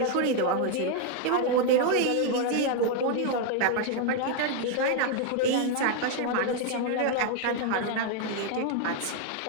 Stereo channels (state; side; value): different; both; correlation 0.00